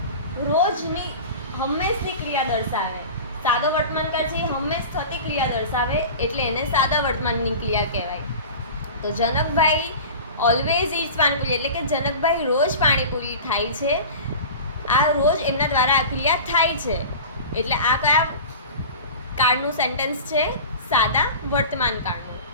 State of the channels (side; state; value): both; inverted; correlation -0.34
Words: રોજની હંમેશની ક્રિયા દર્શાવે. સાદો વર્તમાન કાળ છે એ હંમેશ થતી ક્રિયા દર્શાવે એટલે એને સાદા વર્તમાનની ક્રિયા કહેવાય. તો જનકભાઈ ઓલવેઝ ઈટ્સ પાણીપુરી એટલે કે જનકભાઈ રોજ પાણીપુરી ખાય છે. આ રોજ એમના દ્વારા આ ક્રિયા થાય છે. એટલે આ કયા કાળનું સેન્ટેન્સ છે? સાદા વર્તમાન કાળનું.